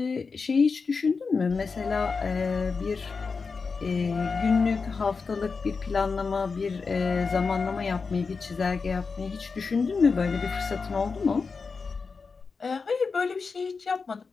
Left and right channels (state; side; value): quieter; right; 4.8 dB